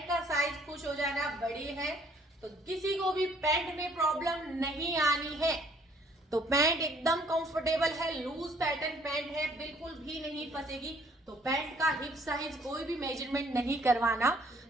का साइज खुश हो जाना, बड़ी है तो किसी को भी पैंट में प्रॉब्लम नहीं आनी है। तो पैंट एकदम कंफर्टेबल है, लूज पैटर्न पैंट है, बिल्कुल भी नहीं फंसेगी। तो पैंट का हिप साइज कोई भी मेजरमेंट नहीं करवाना,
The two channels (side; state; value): both; normal; correlation 0.61